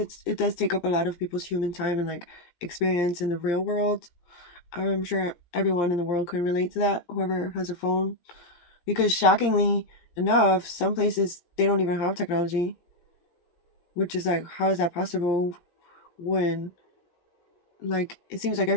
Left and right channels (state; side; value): late; right; 17 ms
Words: does take up a lot of people's human time and like experience in the real world. I'm sure everyone in the world can relate to that. Whoever has a phone because shockingly enough, some places they don't even have technology, which is like, how is that possible when, like, it seems like